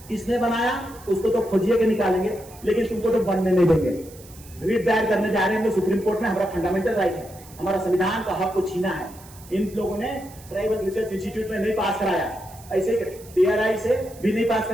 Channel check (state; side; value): noise; right; hiss, 21 dB below the sound